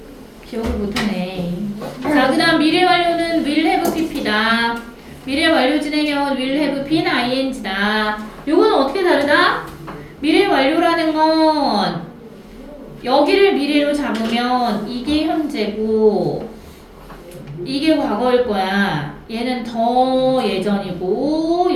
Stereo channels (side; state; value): both; identical; correlation 1.00